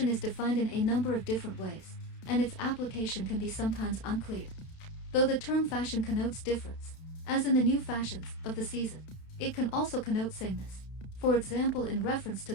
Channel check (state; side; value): late; right; 31 ms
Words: is defined in a number of different ways, and its application can be sometimes unclear. Though the term fashion connotes difference, as in the new fashions of the season, it can also connote sameness, for example in reference